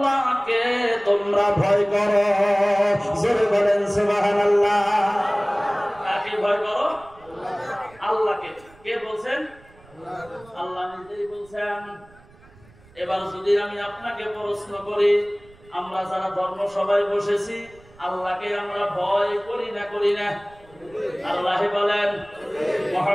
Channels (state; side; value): noise; right; rumble, 26 dB below the sound